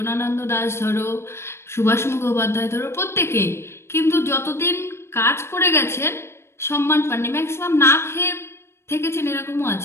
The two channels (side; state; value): right; late; 0.12 ms